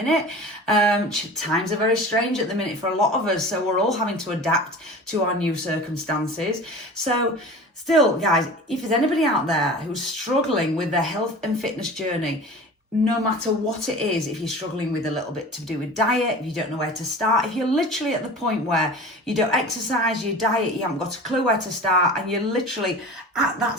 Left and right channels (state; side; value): normal; both; correlation 0.37